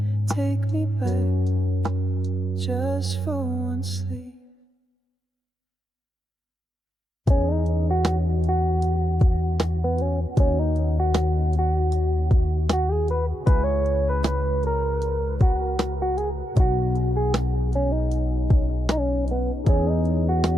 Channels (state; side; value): normal; both; correlation 0.86